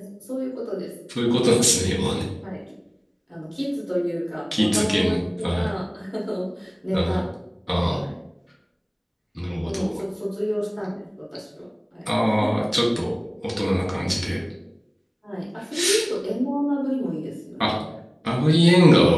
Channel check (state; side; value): identical; both; correlation 1.00